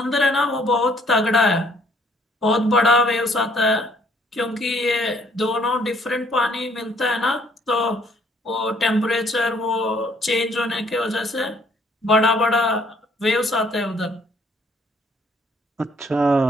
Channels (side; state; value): both; normal; correlation 0.64